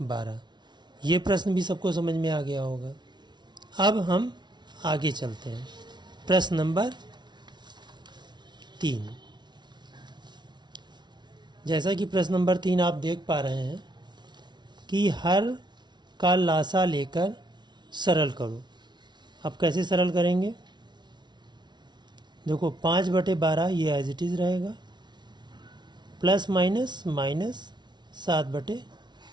ये प्रश्न भी सबको समझ में आ गया होगा। अब हम आगे चलते हैं, प्रश्न नंबर 3। जैसा कि प्रश्न नंबर 3 आप देख पा रहे हैं कि हर का लासा लेकर सरल करो। अब कैसे सरल करेंगे, देखो 5/12 ये एज इट इज़ रहेगा, प्लस माइनस माइनस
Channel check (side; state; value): left; late; 0.21 ms